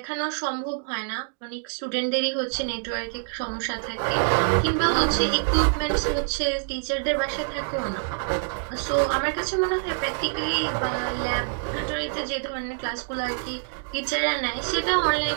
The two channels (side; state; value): left; silent; digital silence